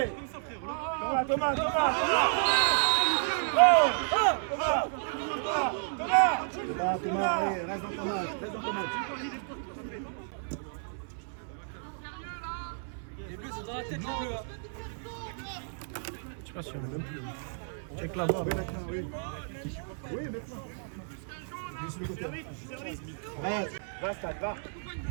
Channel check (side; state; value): left; silent; 57 dB below the other